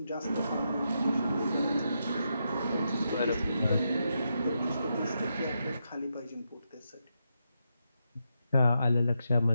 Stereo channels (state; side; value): inverted; both; correlation -0.84